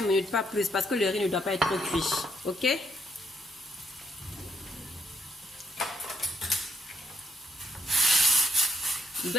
minutes, pas plus, parce que le riz ne doit pas être trop cuit. Ok? Il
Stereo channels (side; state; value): both; normal; correlation 0.73